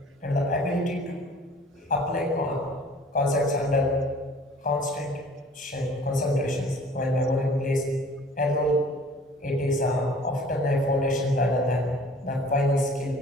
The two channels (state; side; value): normal; both; correlation 0.50